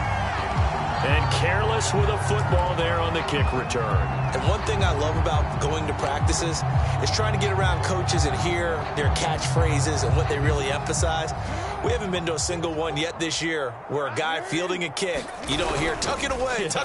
And careless with a football there on the kick return. And one thing I love about going to practices is trying to get around coaches and hear their catchphrases and what they really emphasize. We haven't been to a single one yet this year where a guy fielding a kick, you don't hear, tuck it away,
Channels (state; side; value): identical; both; correlation 1.00